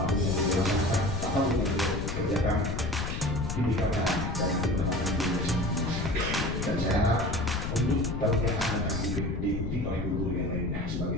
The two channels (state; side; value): noise; left; rumble, 3 dB below the sound